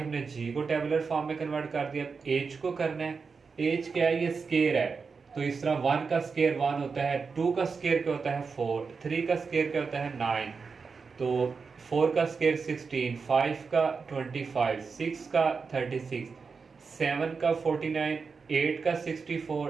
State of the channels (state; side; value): quieter; left; 5.1 dB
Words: जी को टेबुलर फॉर्म में कन्वर्ट कर दिया। एच को करना है, एच क्या है, ये स्केयर है, तो इस तरह 1 का स्केयर 1 होता है, 2 का स्केयर क्या होता है 4, 3 का स्केयर क्या होता है 9, तो 4 का स्केयर 16, 5 का 25, 6 का 36, 7 का 49, 8 का